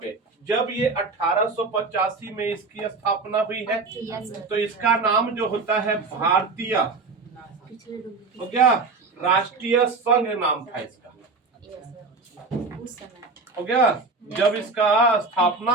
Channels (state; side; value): quieter; left; 4.0 dB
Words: पे, जब ये 1885 में इसकी स्थापना हुई है, तो इसका नाम जो होता है भारतीय, हो गया, राष्ट्रीय संघ नाम था इसका। हो गया? जब इसका स्थापना